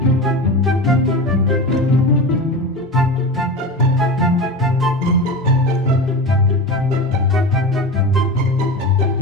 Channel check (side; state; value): both; normal; correlation 0.26